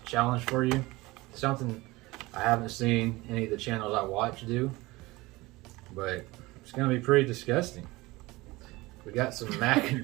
challenge for you. Something I haven't seen any of the channels I watch do, but it's gonna be pretty disgusting. We got some mac and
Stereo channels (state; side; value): quieter; left; 21.1 dB